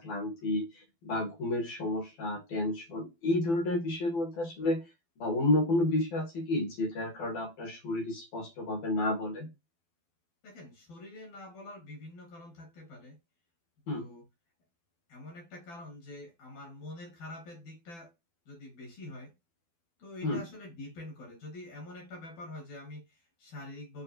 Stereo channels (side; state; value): right; late; 12 ms